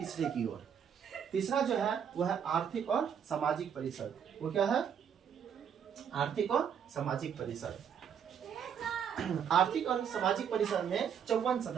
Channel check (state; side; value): quieter; left; 7.9 dB